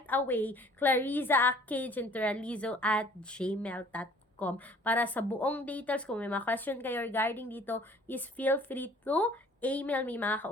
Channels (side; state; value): both; normal; correlation 0.53